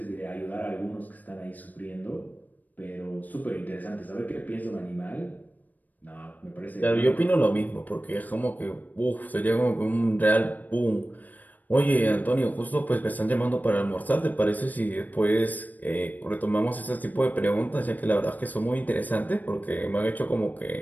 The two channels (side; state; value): right; late; 0.082 ms